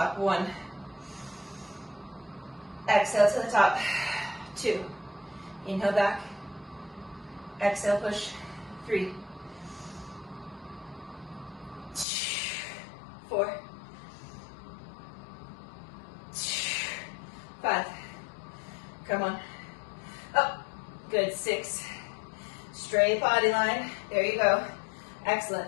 1. Exhale to the top. 2. Inhale back. Exhale, push. 3. 4. 5. Come on. Up. Good. 6. Straight body line. There you go.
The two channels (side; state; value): right; drops out; at 12.1 s